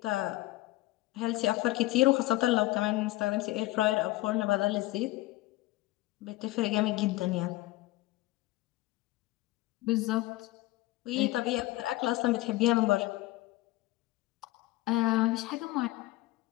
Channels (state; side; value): quieter; right; 18.0 dB